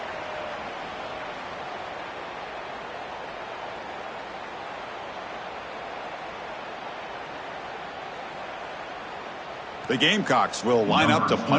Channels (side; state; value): both; identical; correlation 1.00